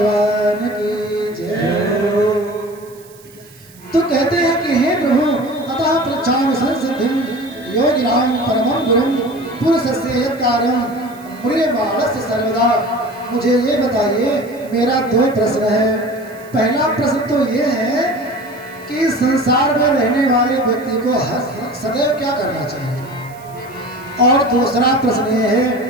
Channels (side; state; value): right; noise; hiss, 25 dB below the sound